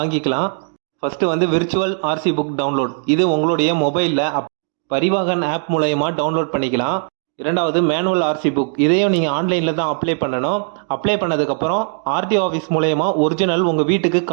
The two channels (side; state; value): left; silent; 62 dB below the other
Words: First virtual RC book download. இது உங்களுடைய மொபைலில் பரிவாகன் ஆப் மூலயமா டவுன்லோட் பண்ணிக்கலாம். இரண்டாவது மேனுவல் ஆர்சி புக். இதையும் நீங்கள் ஆன்லைனில் தான் அப்ளை பண்ணணும். அப்ளை பண்ணதுக்கப்புறம் ஆர்டிஓ ஆஃபீஸ் மூலயமா ஒரிஜினல் உங்கள் வீட்டுக்கு